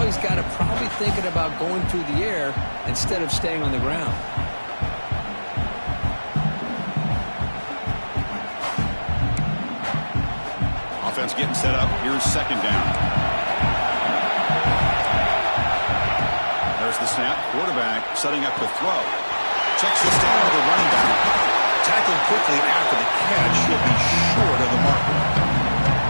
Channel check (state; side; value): inverted; both; correlation -1.00